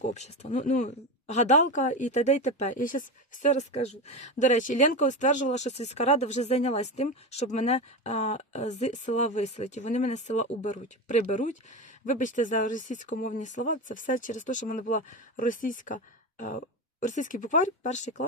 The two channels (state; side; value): normal; both; correlation 0.20